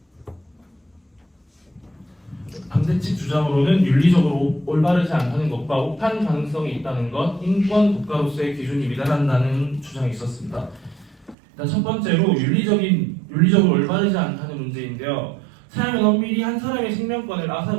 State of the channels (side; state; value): left; drops out; at 11.4 s